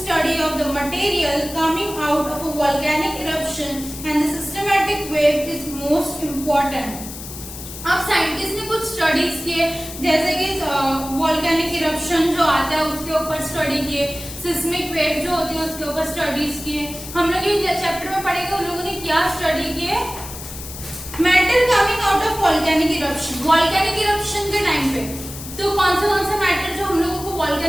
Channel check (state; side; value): noise; left; hiss, 12 dB below the sound